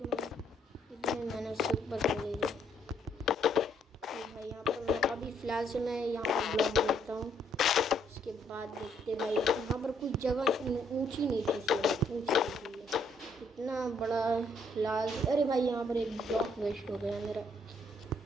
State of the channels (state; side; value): normal; both; correlation 0.69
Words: इतने मेहनत से ऊपर चले गए। तो भाई यहाँ पर अभी फ़िलहाल से मैं यहाँ पर ब्लॉक देखता हूँ, उसके बाद देखते भाई। यहाँ पर कुछ जगह ऊंची नहीं थी, ऊंची इतना बड़ा लाल। अरे भाई यहाँ पर एक ब्लॉक वेस्ट हो गया मेरा।